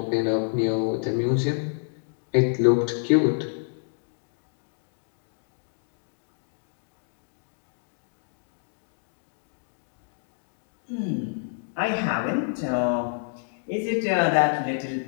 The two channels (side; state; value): right; silent; digital silence